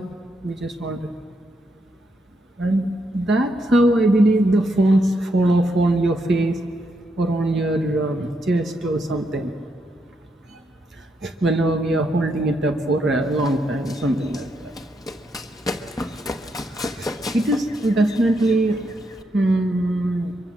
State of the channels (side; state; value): both; normal; correlation 0.79